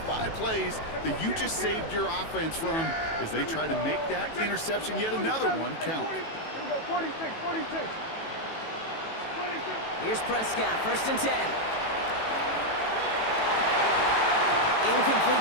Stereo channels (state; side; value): late; right; 18 ms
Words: plays that you just saved your offense from as they try to make that interception, yet another one, count. Here we go, 46. Here's Prescott, 1st and 10.